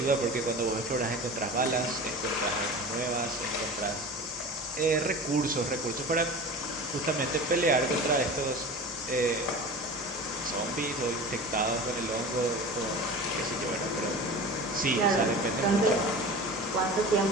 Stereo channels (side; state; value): both; normal; correlation 0.34